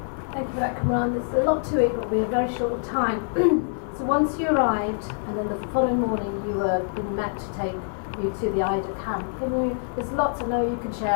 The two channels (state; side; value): silent; right; digital silence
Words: Thank you for that, Kamran. There's a lot to it, but we're very short of time. So once you arrived, and then the following morning you were being met to take you to the Ida camp. There's lots I know you can